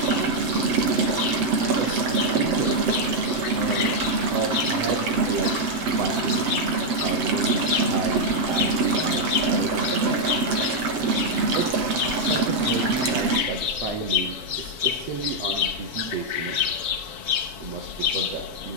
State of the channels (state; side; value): late; left; 7.9 ms